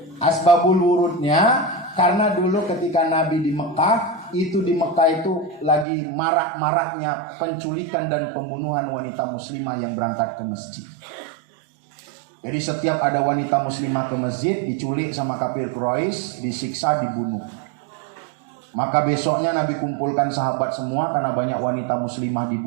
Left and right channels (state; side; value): drops out; left; at 5.9 s